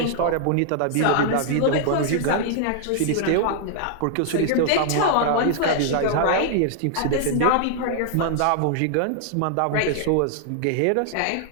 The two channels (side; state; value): both; different; correlation -0.01